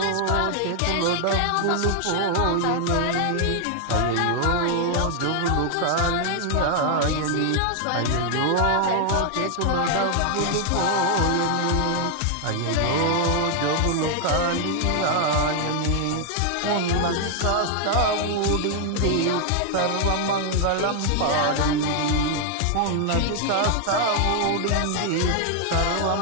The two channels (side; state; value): both; different; correlation 0.00